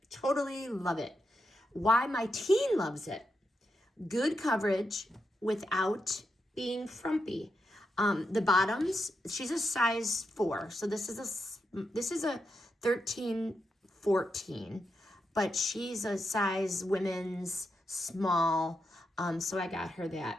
Totally love it. Why my teen loves it. Good coverage without being frumpy. The bottoms, she's a size 4. So this is a 13, 14. But she's a size women's small, so I got her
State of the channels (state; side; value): normal; both; correlation 0.85